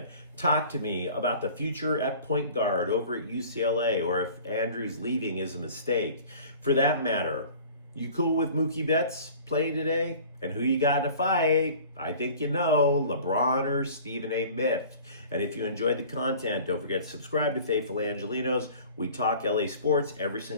Talk to me about the future at point guard over at UCLA, or if Andrews leaving is a mistake. For that matter, you cool with Mookie Betts? playing today? And who you got in a fight? I think you know, LeBron or Stephen A. Smith. And if you enjoyed the content, don't forget to subscribe to Faithful Angelenos. We talk LA sports every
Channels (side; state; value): both; inverted; correlation -0.45